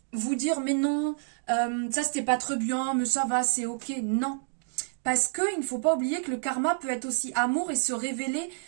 vous dire, mais non, ça c'était pas très bien, mais ça va, c'est ok. Non. Parce qu'il ne faut pas oublier que le karma peut être aussi amour et se révéler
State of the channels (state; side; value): silent; left; digital silence